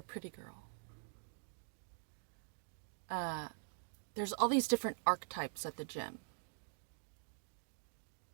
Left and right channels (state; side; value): silent; left; digital silence